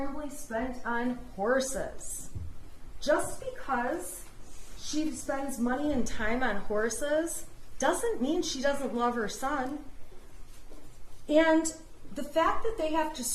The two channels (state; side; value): identical; both; correlation 1.00